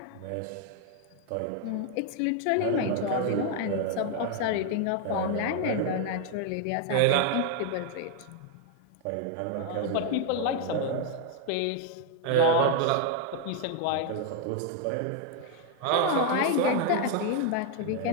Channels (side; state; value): both; different; correlation 0.00